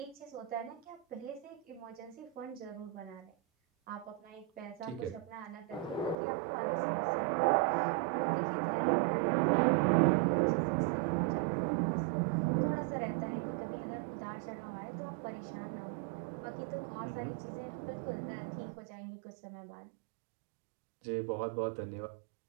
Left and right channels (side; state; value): left; drops out; at 6.2 s